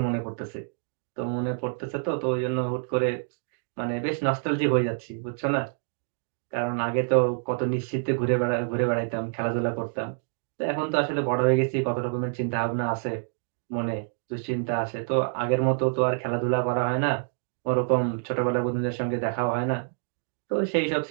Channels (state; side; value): silent; left; digital silence